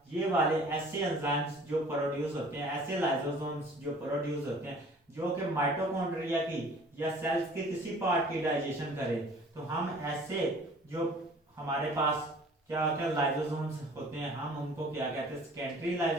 ये वाले ऐसे एंजाइम्स जो प्रोड्यूस होते हैं, ऐसे लाइसोसोम्स जो प्रोड्यूस होते हैं, जो कि माइटोकॉन्ड्रिया की या सेल्स के किसी पार्ट की डाइजेशन करें, तो हम ऐसे जो हमारे पास क्या होता है, लाइसोसोम्स होते हैं, हम उनको क्या कहते हैं, सेकेंडरी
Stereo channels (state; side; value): normal; both; correlation 0.50